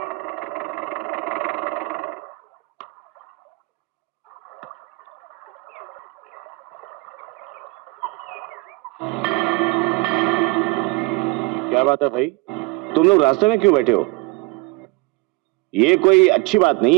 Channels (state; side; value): quieter; left; 24.1 dB